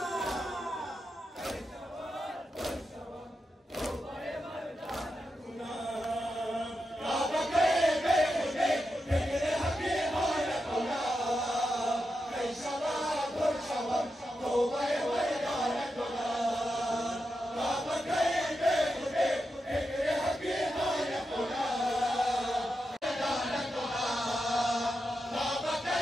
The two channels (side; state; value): both; normal; correlation 0.88